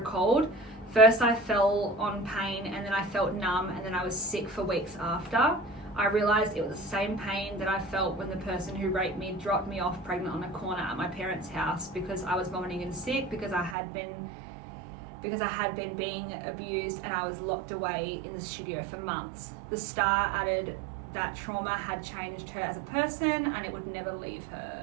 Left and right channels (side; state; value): left; drops out; at 13.8 s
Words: First I fell on pain, and then I felt numb, and then I was sick for weeks after. I realised it was the same pain that I felt when the person who raped me dropped me off pregnant on a corner at my parents' house because I was vomiting and sick, because I had been being abused, and I was locked away in the studio for months. The star added that trauma had changed her as a person and it would never leave